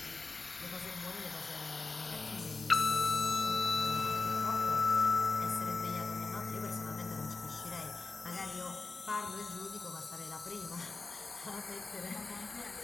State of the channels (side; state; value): right; quieter; 3.8 dB